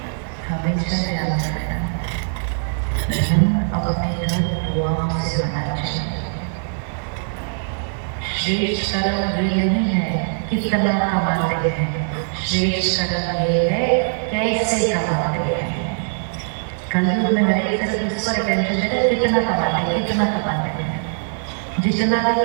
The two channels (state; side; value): silent; left; digital silence